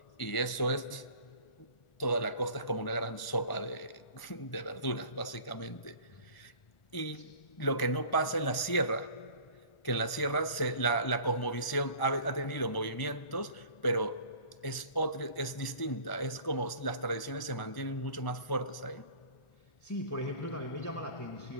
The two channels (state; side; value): late; right; 1.0 ms